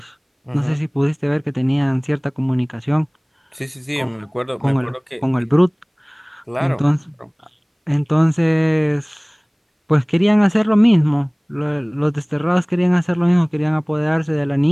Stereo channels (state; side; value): identical; both; correlation 1.00